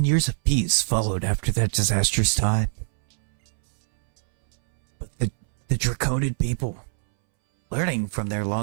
years of peace followed after that disastrous time. But the Draconian people, learning from their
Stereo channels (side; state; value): left; silent; 63 dB below the other